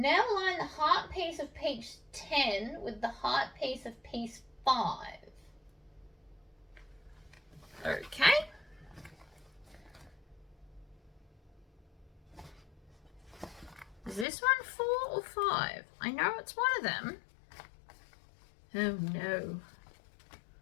line the heart piece of piece 10 with the heart piece of piece 5. Okay. Is this one 4 or 5? I know it's one of them. Oh no.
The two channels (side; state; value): right; drops out; at 14.2 s